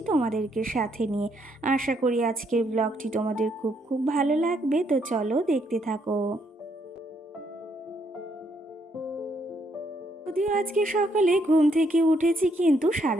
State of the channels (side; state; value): both; normal; correlation 0.73